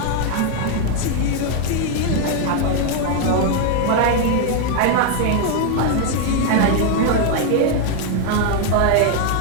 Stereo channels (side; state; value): both; different; correlation 0.00